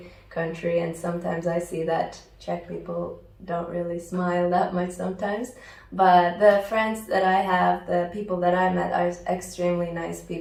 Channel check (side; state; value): both; identical; correlation 1.00